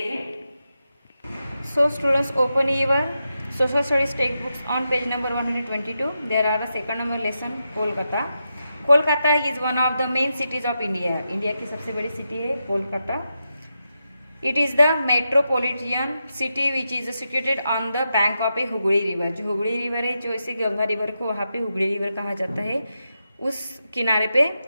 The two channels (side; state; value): both; inverted; correlation -0.87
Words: हैं। So students, open your social studies textbooks on page number 122. There are a second number lesson Kolkata. Kolkata is one of the main cities of India. India की सबसे बड़ी सिटी है Kolkata. It is the metropolitan city which is situated on the bank of a Hooghly river. जो Hooghly river है, जो इसे Ganga river को वहाँ पे हुगली रिवर कहा जाता है, उस किनारे पे